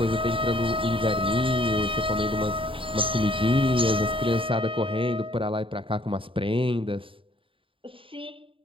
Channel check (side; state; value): left; late; 0.25 ms